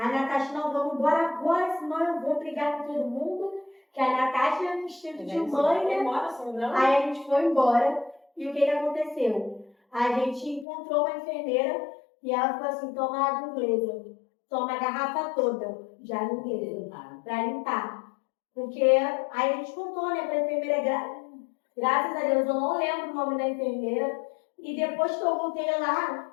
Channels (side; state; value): right; drops out; at 10.7 s